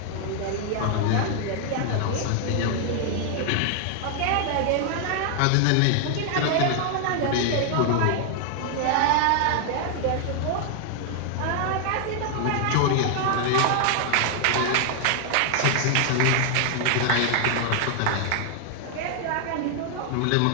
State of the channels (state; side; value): different; both; correlation 0.00